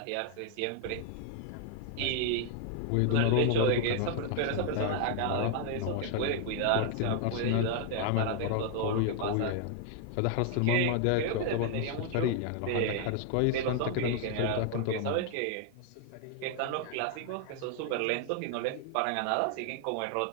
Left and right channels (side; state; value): both; different; correlation 0.00